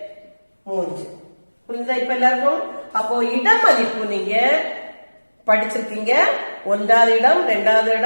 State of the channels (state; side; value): inverted; both; correlation -1.00